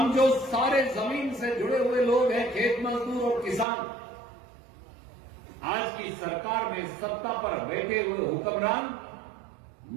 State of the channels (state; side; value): drops out; left; at 3.7 s